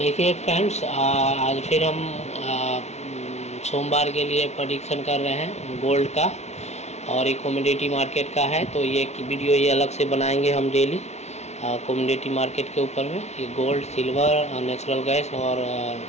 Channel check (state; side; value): late; right; 0.32 ms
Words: फ्रेंड्स, आज फिर हम सोमवार के लिए प्रेडिक्शन कर रहे हैं गोल्ड का, और एक कमोडिटी मार्केट का है। तो ये वीडियो ये अलग से बनाएंगे हम डेली कमोडिटी मार्केट के ऊपर में, ये गोल्ड, सिल्वर, नेचुरल गैस और